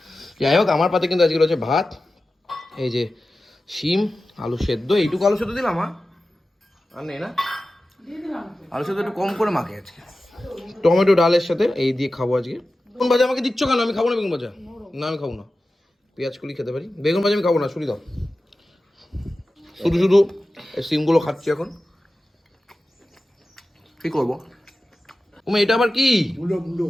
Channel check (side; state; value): both; normal; correlation 0.94